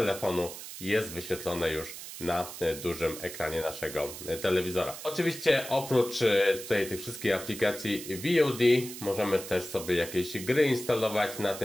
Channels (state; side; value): noise; right; hiss, 11 dB below the sound